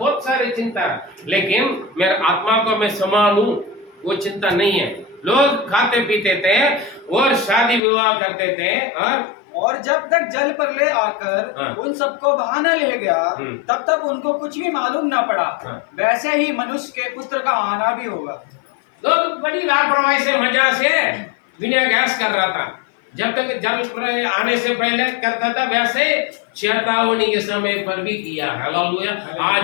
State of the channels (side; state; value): right; drops out; at 7.8 s